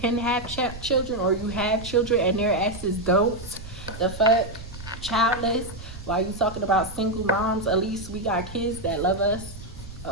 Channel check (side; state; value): right; noise; rumble, 13 dB below the sound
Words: have children or you have children and their asses don't. The fuck, childless. While you talking about single moms, at least we got kids that love us.